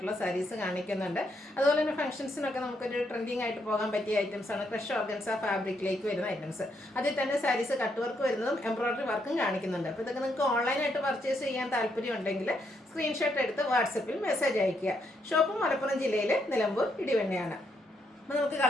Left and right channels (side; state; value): both; normal; correlation 0.77